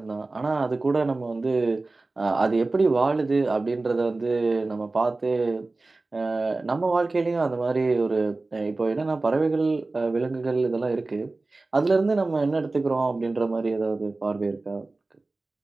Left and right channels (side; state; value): left; quieter; 3.3 dB